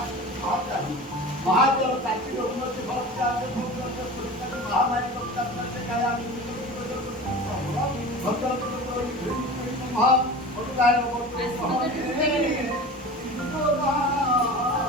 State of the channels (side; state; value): both; normal; correlation 0.34